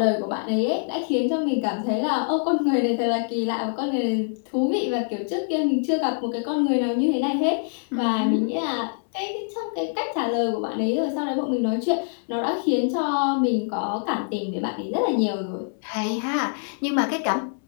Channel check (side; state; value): right; silent; 62 dB below the other